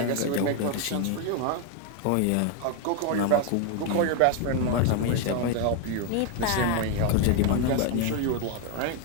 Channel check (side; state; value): both; different; correlation 0.01